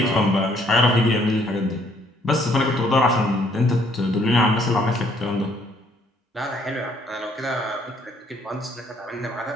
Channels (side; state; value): both; normal; correlation 0.66